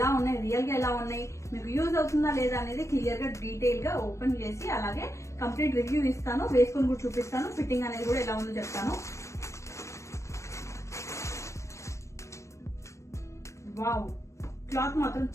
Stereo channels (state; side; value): late; right; 0.14 ms